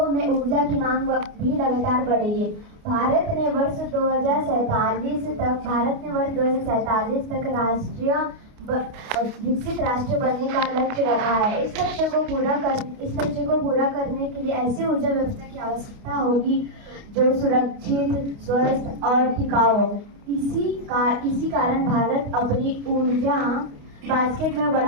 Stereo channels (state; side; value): late; left; 29 ms